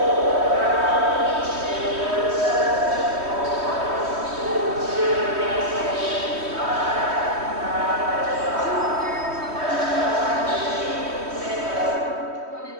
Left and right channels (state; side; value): late; left; 3.2 ms